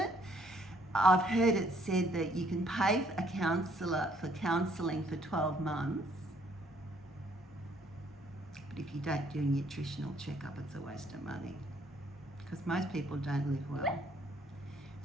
I've heard it said that you can pay a counsellor for counselling for 12 months. But if you don't do a nutritional checkup, it's a waste of money. Because most people don't live well.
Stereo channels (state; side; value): normal; both; correlation 0.65